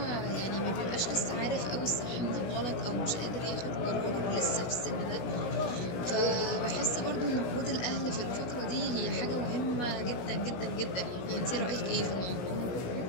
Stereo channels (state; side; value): late; right; 17 ms